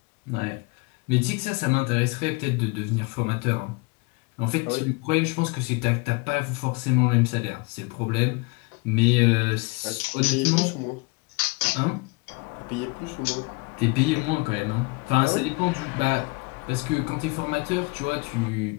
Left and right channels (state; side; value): quieter; right; 27.7 dB